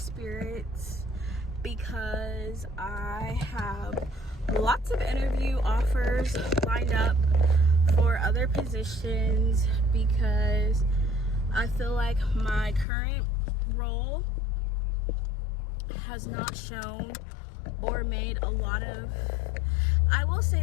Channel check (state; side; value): drops out; right; at 12.9 s